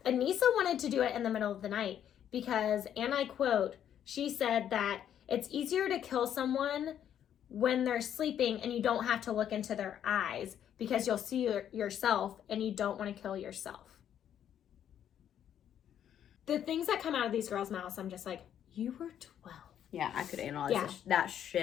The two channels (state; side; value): quieter; right; 9.8 dB